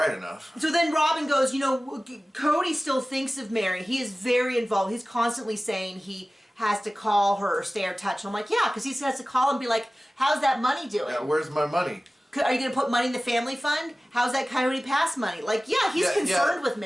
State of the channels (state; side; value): normal; both; correlation 0.97